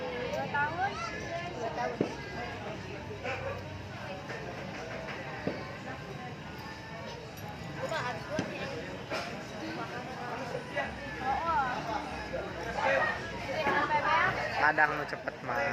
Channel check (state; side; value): identical; both; correlation 1.00